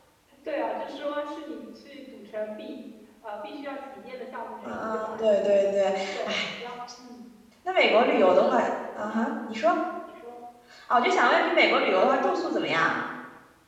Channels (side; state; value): both; identical; correlation 1.00